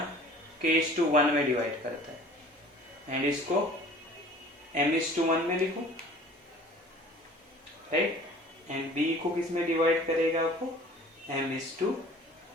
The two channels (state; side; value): normal; both; correlation 0.47